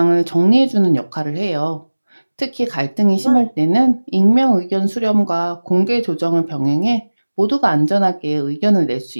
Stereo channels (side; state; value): both; inverted; correlation -1.00